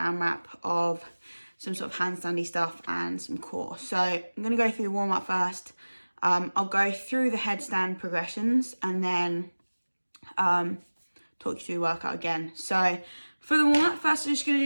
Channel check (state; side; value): inverted; both; correlation -1.00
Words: of some sort of handstandy stuff and some core. So I'm going to go through the warm-up first. I'll go through the headstand progressions and then talk you through the workout again. So for the warm-up, first we're just going